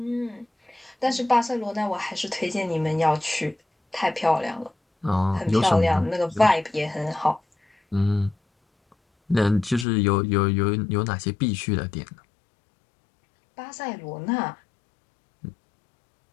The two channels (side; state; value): right; drops out; at 9.9 s